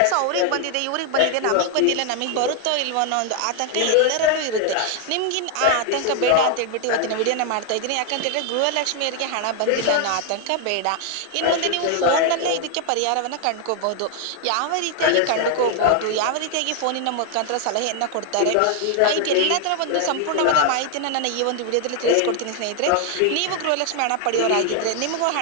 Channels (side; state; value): both; different; correlation 0.00